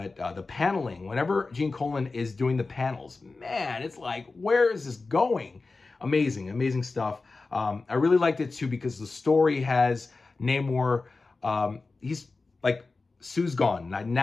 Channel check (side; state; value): right; quieter; 3.8 dB